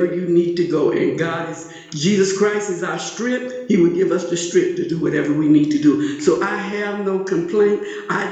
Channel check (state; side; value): identical; both; correlation 1.00